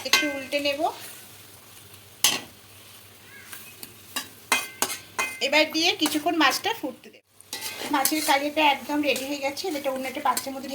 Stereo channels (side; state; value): both; identical; correlation 1.00